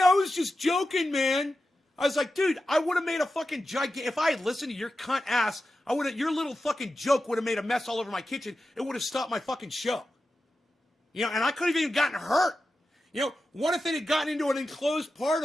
I was just joking, man. I was like, dude, I would have made a fucking if I had listened to your cunt ass, your little fucking joke would have made a mess all over my kitchen. It would have stopped my fucking show. And I could have even gotten hurt. What if it had gotten into an enclosed part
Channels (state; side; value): normal; both; correlation 0.92